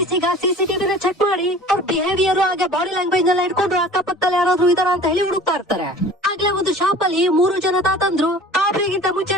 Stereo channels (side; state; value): both; normal; correlation 0.44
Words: ಈಗ ಸಿಸಿಟಿವಿನ ಚೆಕ್ ಮಾಡಿ ಅವ್ರ ಬಿಹೇವಿಯರ್ ಹಾಗೆ ಬಾಡಿ ಲ್ಯಾಂಗ್ವೇಜ್ ಎಲ್ಲ ಇಟ್ಕೊಂಡು ಅಕ್ಕಪಕ್ಕದಲ್ಲಿ ಯಾರಾದ್ರೂ ಇದಾರ ಅಂತ ಹೇಳಿ ಹುಡುಕ್ತಾ ಇರ್ತಾರೆ. ಆಗ್ಲೇ ಒಂದು ಶಾಪ್ ಅಲ್ಲಿ 3 ಜನ ತಾತಂದ್ರು ರಾಬರಿಗಿಂತ ಮುಂಚೆ